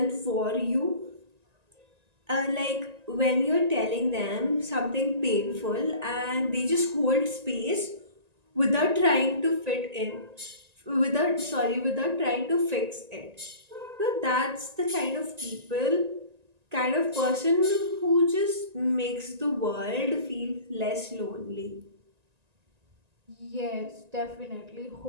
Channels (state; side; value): late; left; 1.9 ms